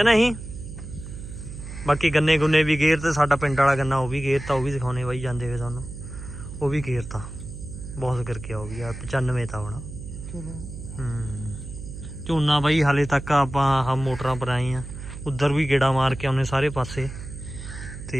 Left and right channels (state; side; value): noise; right; hum, 10 dB below the sound